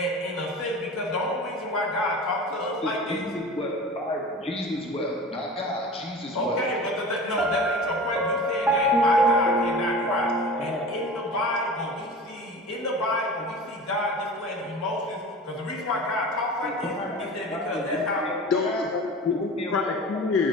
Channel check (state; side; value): normal; both; correlation 0.36